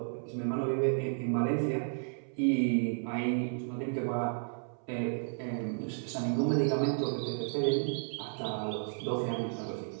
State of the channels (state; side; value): silent; left; 56 dB below the other